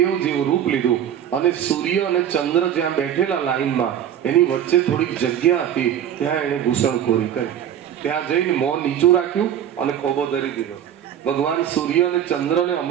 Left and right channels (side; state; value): left; quieter; 9.9 dB